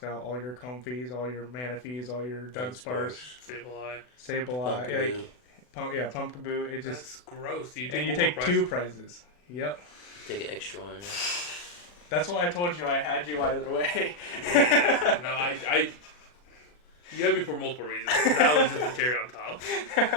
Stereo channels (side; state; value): right; late; 40 ms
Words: out all your Comfies, all your Manaphies, all your Dunsparce, Sableye, Pumpkaboo. It just that's gross. You take 2 prizes. Yep. Take an extra one. Yeah. That's why I told you I had you either way. No, I you had me for multiple reasons. That was just a cherry on top.